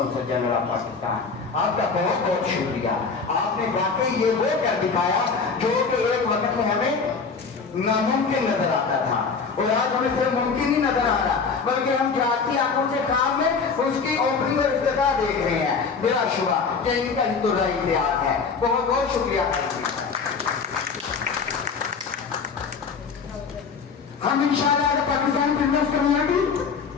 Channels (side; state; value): right; quieter; 5.2 dB